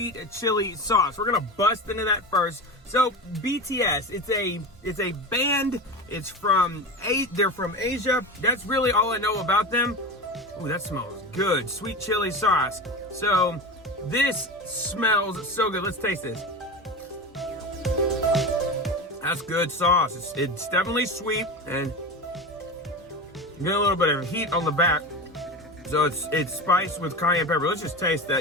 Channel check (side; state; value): both; normal; correlation 0.25